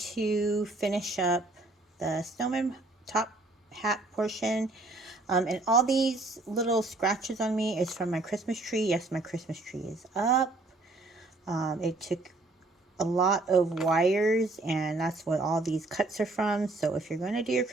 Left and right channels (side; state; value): left; quieter; 3.1 dB